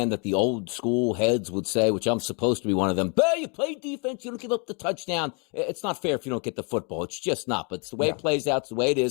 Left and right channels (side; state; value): right; quieter; 35.9 dB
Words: that the old school heads would say, which I'm supposed to be one of them, but you play defense, you don't give up the touchdown. It's not fair if you don't get the football. It's just not. But it's the way it plays out. It's the way it